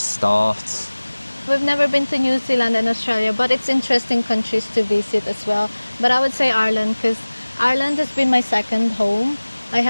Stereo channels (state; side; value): inverted; both; correlation -1.00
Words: We've never been to New Zealand and Australia, but it's interesting countries to visit as well. But I would say Ireland because Ireland has been my second home. I